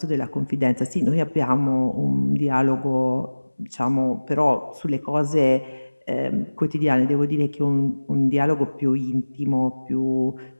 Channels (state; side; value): inverted; both; correlation -1.00